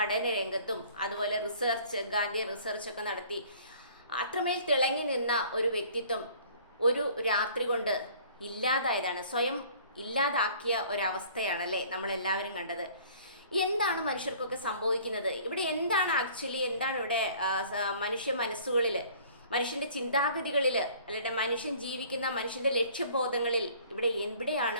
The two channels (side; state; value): both; inverted; correlation -0.52